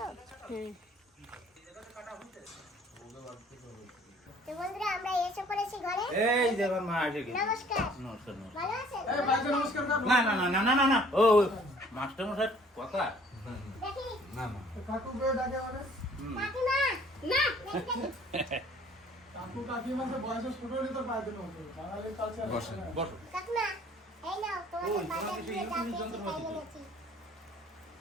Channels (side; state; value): both; normal; correlation 0.56